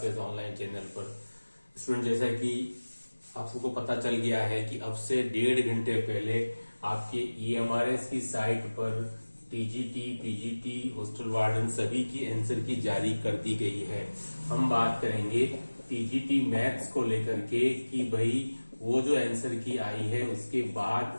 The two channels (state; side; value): inverted; both; correlation -1.00